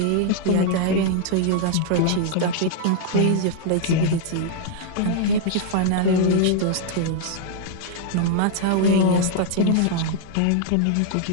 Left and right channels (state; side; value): different; both; correlation -0.01